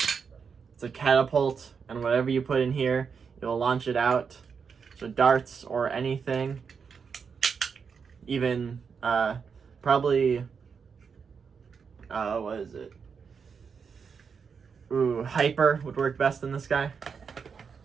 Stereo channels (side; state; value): left; quieter; 6.1 dB